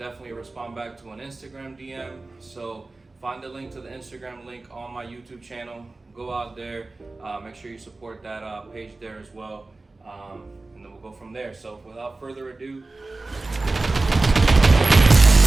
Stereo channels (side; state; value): left; quieter; 3.3 dB